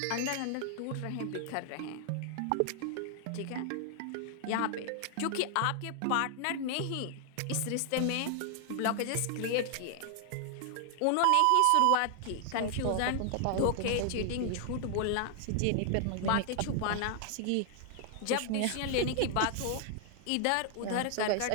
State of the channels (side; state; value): both; different; correlation 0.00